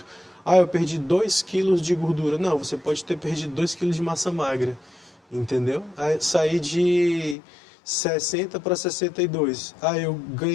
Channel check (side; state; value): right; drops out; at 7.4 s